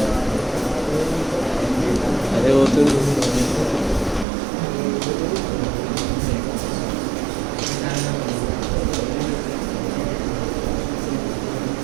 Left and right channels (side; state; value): left; drops out; at 4.2 s